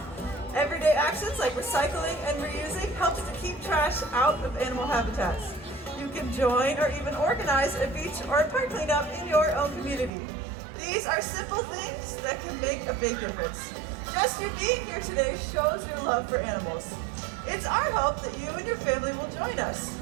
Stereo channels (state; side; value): drops out; left; at 10.1 s